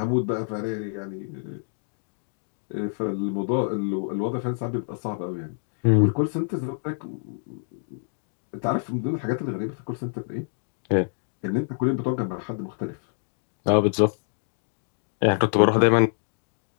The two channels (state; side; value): silent; right; digital silence